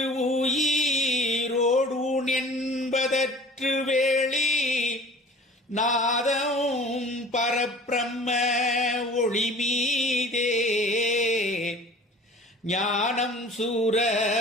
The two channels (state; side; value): normal; both; correlation 0.45